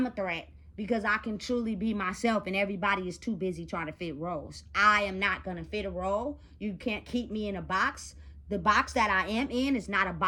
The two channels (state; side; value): identical; both; correlation 1.00